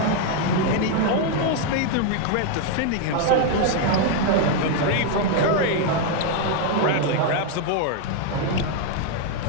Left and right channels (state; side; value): different; both; correlation 0.01